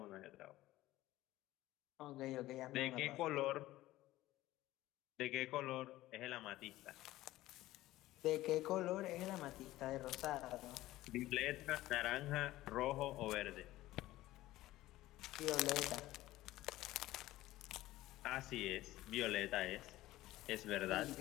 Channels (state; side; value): quieter; right; 16.4 dB